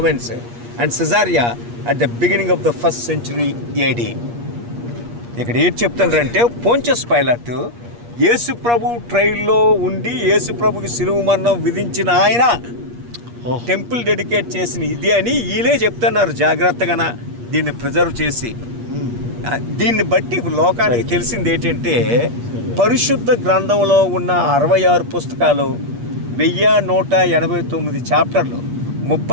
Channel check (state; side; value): late; left; 8.5 ms